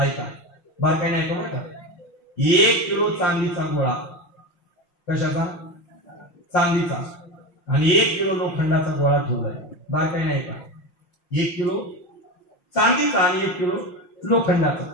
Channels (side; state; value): right; late; 5.7 ms